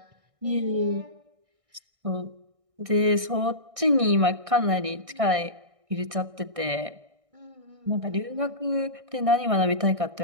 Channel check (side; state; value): left; late; 1.6 ms